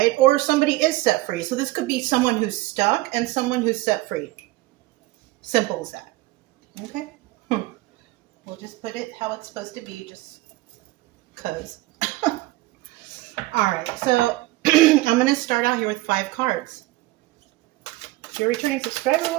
Or somebody is set free. So this could be someone who's stuck and someone who's set free. Simple as that. Okay? We'll just put it how it's supposed to be, just because. All right, so I'm going to start out here with 5 cards. If you're a returning subscriber,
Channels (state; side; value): quieter; left; 19.2 dB